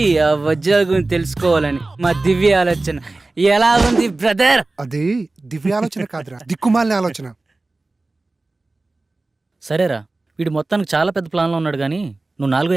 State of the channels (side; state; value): left; quieter; 3.2 dB